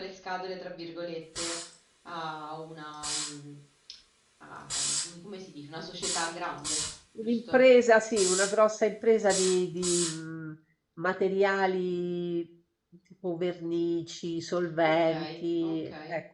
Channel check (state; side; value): identical; both; correlation 1.00